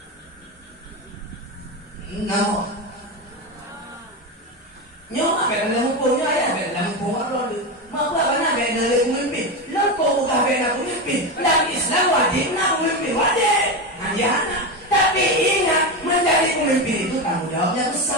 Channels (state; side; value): normal; both; correlation 0.16